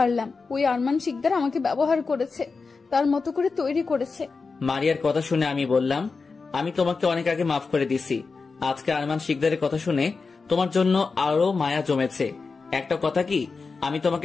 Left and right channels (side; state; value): right; quieter; 4.5 dB